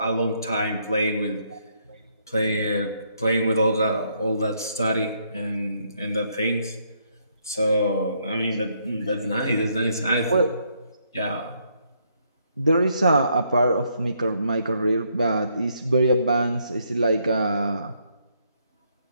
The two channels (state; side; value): inverted; both; correlation -0.73